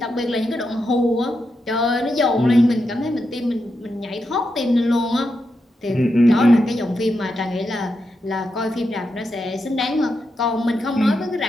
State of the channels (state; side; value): normal; both; correlation 0.86